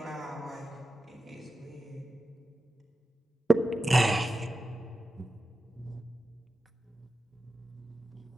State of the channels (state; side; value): normal; both; correlation 0.92